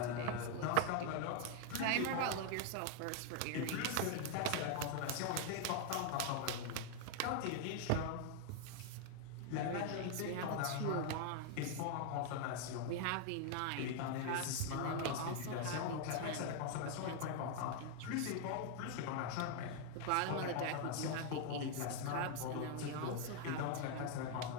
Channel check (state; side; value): different; both; correlation 0.00